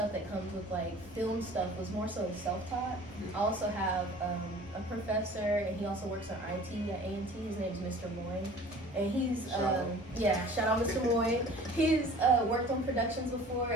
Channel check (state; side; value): normal; both; correlation 0.46